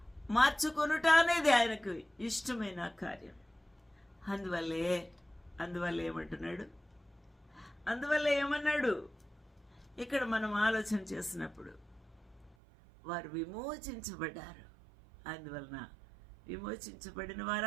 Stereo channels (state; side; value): drops out; left; at 12.6 s